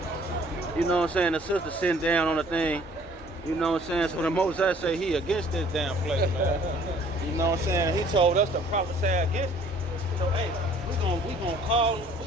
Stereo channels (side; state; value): both; normal; correlation 0.55